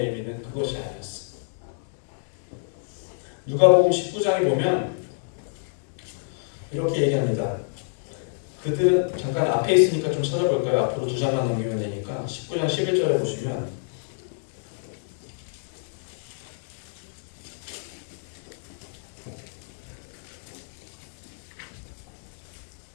의미는 그것이 아니었어요. 누가복음 19장에 보면 이렇게 얘기합니다. 그들은 잠깐 앞에 있으니까 좀 찾아볼까요? 앞으로 2장만 넘기면 되니까 19장 11절에 보시면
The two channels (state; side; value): silent; right; digital silence